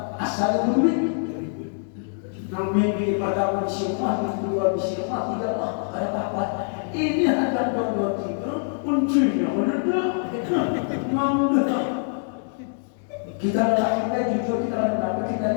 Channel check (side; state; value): right; silent; digital silence